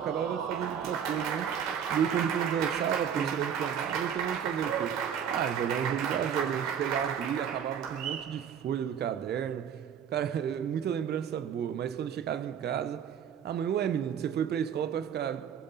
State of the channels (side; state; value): left; quieter; 8.2 dB